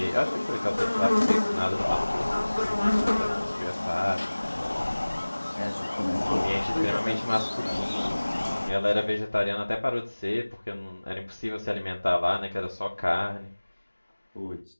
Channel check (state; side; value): inverted; both; correlation -1.00